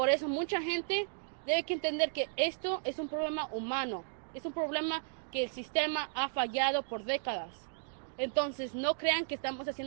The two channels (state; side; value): silent; left; digital silence